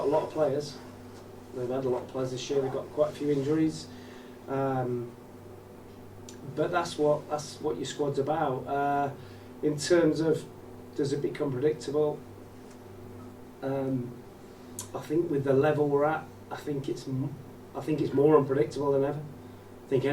a lot of players. They've had a lot of players this year. They've got quite a few injuries. But that's what your squad's about. In terms of, does it become predictable? I think with the level we're at, I think it's more unpredictable than ever. I think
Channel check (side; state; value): both; identical; correlation 1.00